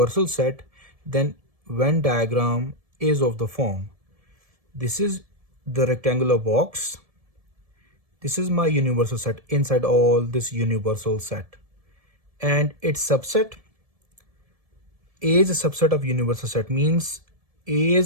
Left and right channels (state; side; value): late; left; 1.7 ms